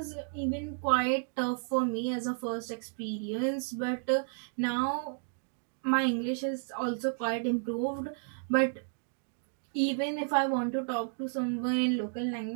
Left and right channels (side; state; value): left; silent; digital silence